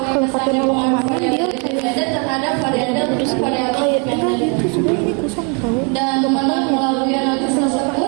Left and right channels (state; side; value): quieter; left; 35.7 dB